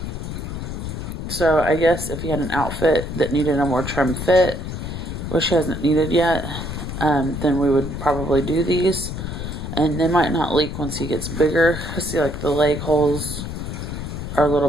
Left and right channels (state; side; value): noise; left; rumble, 6 dB below the sound